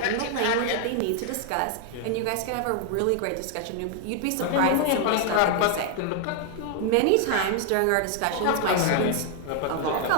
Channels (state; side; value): different; both; correlation 0.00